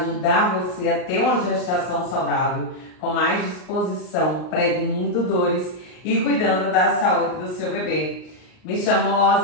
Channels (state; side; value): late; right; 38 ms